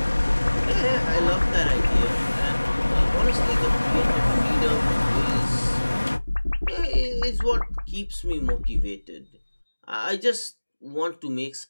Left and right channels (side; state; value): both; inverted; correlation -1.00